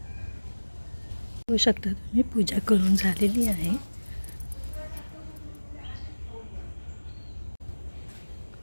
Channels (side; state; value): both; inverted; correlation -1.00